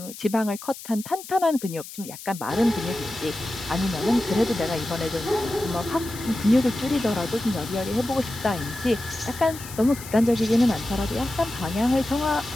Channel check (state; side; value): noise; left; hiss, 14 dB below the sound